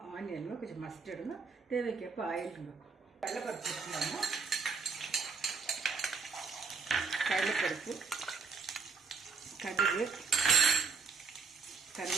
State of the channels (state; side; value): quieter; left; 5.0 dB